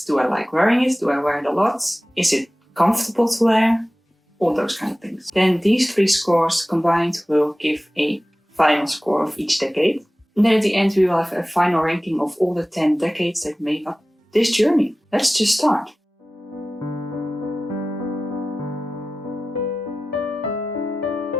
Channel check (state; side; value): normal; both; correlation 0.96